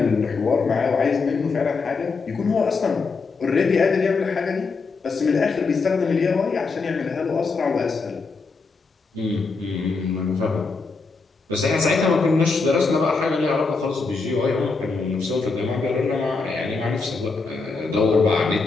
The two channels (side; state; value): right; quieter; 4.3 dB